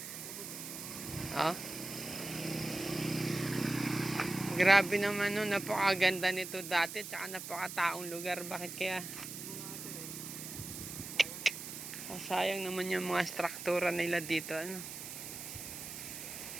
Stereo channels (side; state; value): right; noise; hiss, 9 dB below the sound